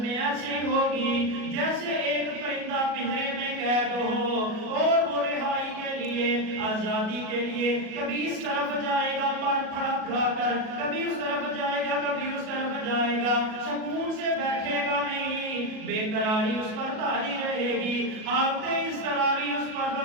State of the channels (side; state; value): left; late; 37 ms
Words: میں ایسی ہوگی جیسے ایک پرندہ پنجرے میں قید ہو اور وہ رہائی کے لیے لیے، آزادی کے لیے، کبھی اس طرف جائے گا پر پھڑا پھڑا کر، کبھی اس طرف جائے گا، کبھی اس طرف جائے گا، سکون سے بیٹھے گا نہیں، بے قراری اس پر طاری رہے گی، حالت اضطراری اس پر